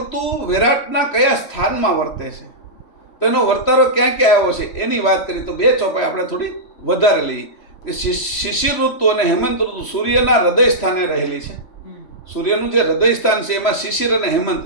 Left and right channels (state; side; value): late; right; 3.1 ms